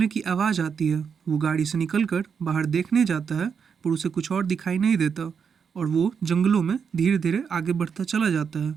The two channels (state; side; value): quieter; left; 6.6 dB